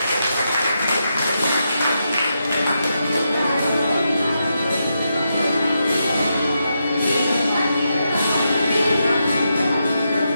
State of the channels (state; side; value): inverted; both; correlation -0.85